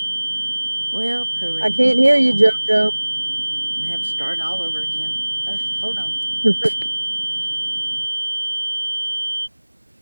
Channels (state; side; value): inverted; both; correlation -1.00